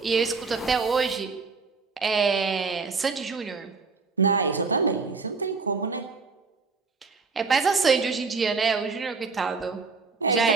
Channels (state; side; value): quieter; left; 4.6 dB